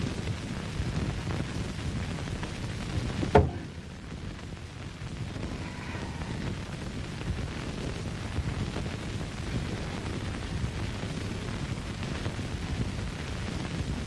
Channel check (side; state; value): both; identical; correlation 1.00